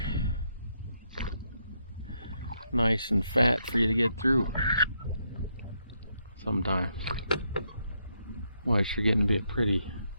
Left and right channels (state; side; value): inverted; both; correlation -0.78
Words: nice and fat for you to get through sometimes. Well, it's getting to be a pretty